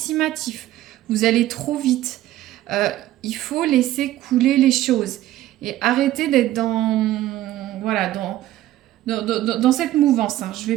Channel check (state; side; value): quieter; left; 14.4 dB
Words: Vous allez trop vite. Il faut laisser couler les choses et arrêter d'être dans dans cette mouvance, hein. Je ne